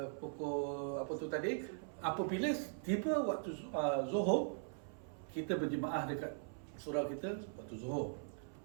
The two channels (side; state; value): left; silent; 51 dB below the other